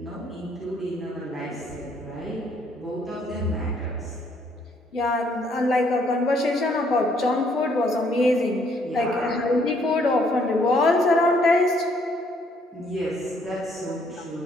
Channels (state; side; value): normal; both; correlation 0.67